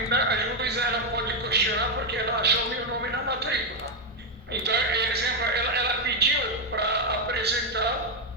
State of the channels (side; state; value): both; normal; correlation 0.03